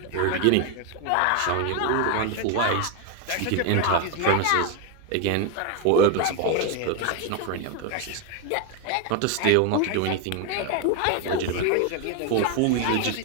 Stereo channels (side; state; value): both; different; correlation 0.01